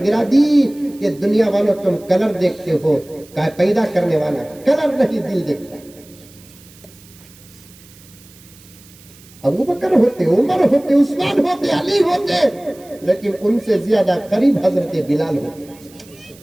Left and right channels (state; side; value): noise; right; hiss, 24 dB below the sound